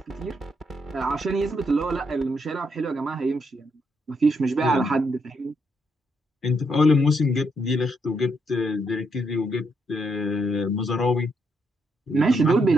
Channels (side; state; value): both; normal; correlation 0.77